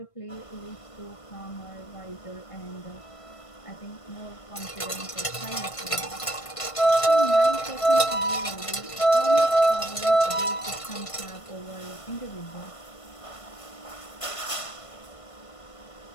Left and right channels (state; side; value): late; right; 1.5 ms